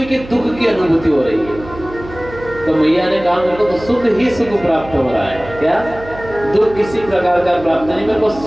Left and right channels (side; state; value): right; noise; hum, 16 dB below the sound